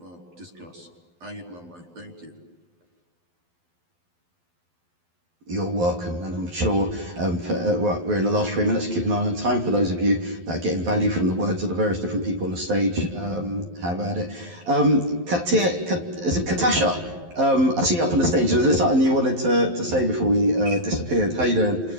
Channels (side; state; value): left; late; 12 ms